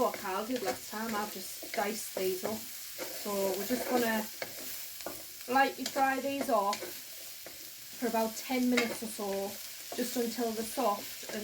Carl did last time. I've just diced these up. So we're just going to lightly fry these off for about 10 minutes or so, just until they're soft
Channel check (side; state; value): both; identical; correlation 1.00